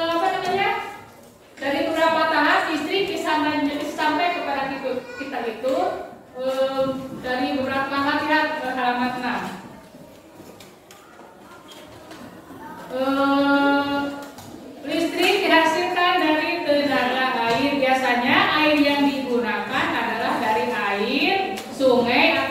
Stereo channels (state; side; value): identical; both; correlation 1.00